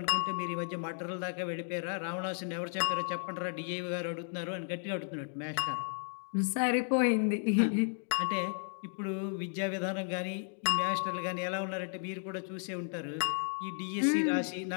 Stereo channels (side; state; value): right; silent; 55 dB below the other